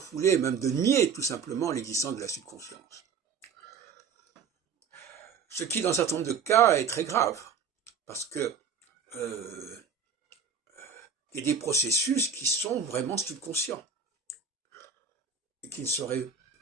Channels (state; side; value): quieter; left; 6.2 dB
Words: même de nier tout simplement l'existence de la subconscience. Ce qui, dans un certain nombre de cas, est très grave, parce que il y a des processus qui sont vraiment subconscients, et qui ne seraient